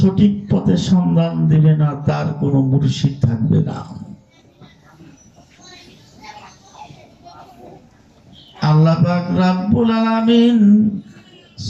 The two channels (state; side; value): identical; both; correlation 1.00